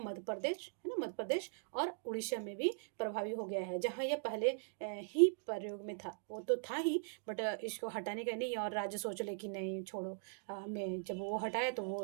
मध्य प्रदेश, है ना, मध्य प्रदेश और उड़ीसा में भी प्रभावी हो गया है। जहाँ यह पहले ही प्रयोग में था, वो तो था ही, बट इसको हटाने का नहीं, और राज्य सोच ले कि नहीं छोड़ो, हमें जब वो हटाया तो वो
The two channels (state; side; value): silent; left; digital silence